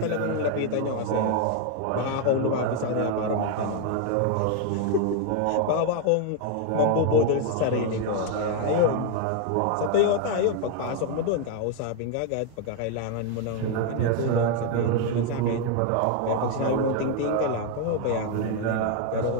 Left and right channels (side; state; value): both; different; correlation 0.01